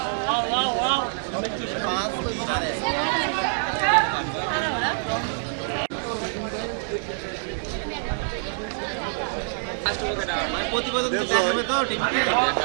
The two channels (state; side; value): silent; left; digital silence